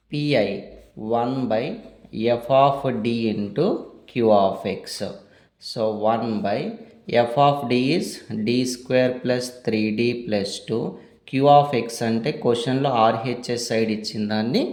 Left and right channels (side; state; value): both; identical; correlation 1.00